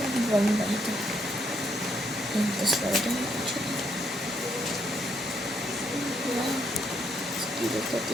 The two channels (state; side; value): normal; both; correlation 0.74